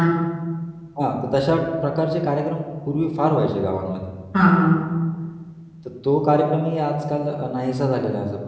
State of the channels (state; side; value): identical; both; correlation 1.00